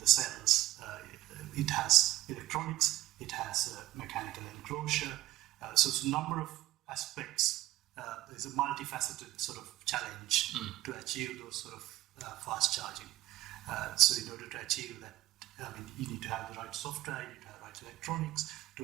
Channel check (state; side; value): quieter; left; 15.9 dB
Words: cells. It has electronics, it has a mechanical enclosure. So it's a number of aspects. There's a multifaceted sort of challenge to achieve those sort of fast charging. So in order to achieve that, you need to have the right software, you need to have the right electronics to